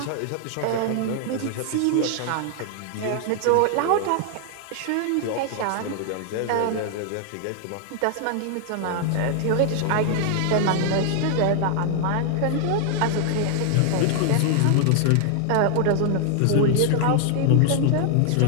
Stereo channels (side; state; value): both; different; correlation 0.00